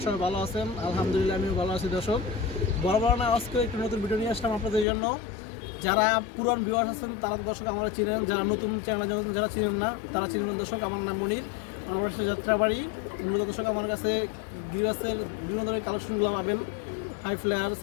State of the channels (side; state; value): right; drops out; at 4.9 s